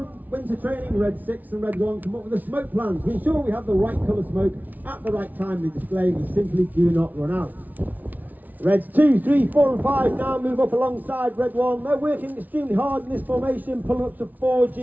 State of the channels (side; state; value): left; late; 0.078 ms